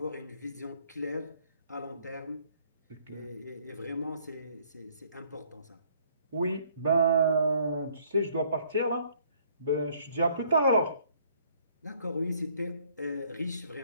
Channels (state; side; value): inverted; both; correlation -0.62